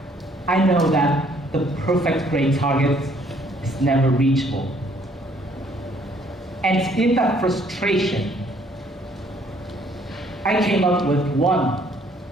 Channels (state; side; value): normal; both; correlation 0.63